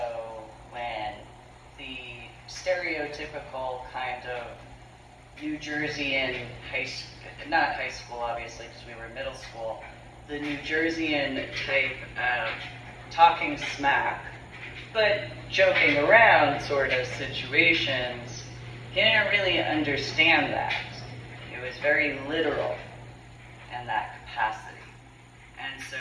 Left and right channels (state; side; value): identical; both; correlation 1.00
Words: when the stereotypical kind of New Jerseyan not high school obviously because we were middle school, the New Jerseyan type of talking smack, but joking around sort of situations, he didn't really understand that. It was very literal in that capacity. And so